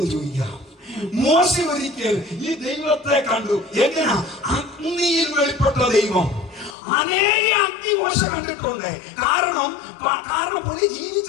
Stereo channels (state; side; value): drops out; right; at 6.8 s